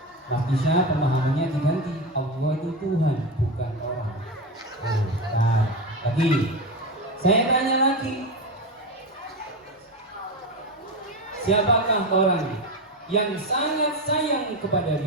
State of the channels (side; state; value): both; normal; correlation 0.18